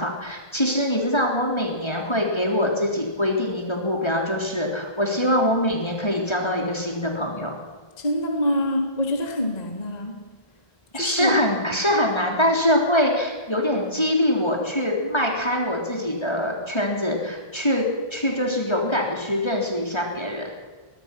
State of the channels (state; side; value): late; right; 1.3 ms